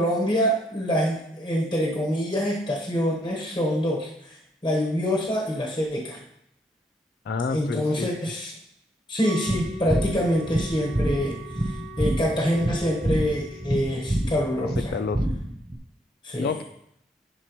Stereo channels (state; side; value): normal; both; correlation 0.73